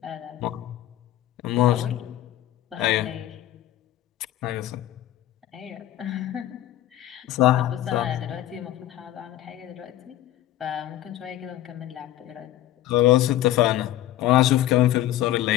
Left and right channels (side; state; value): right; quieter; 13.7 dB